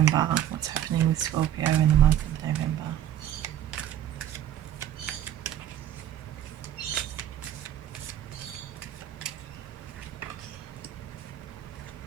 What's happening with Scorpio in the month of November?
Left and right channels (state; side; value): quieter; left; 11.3 dB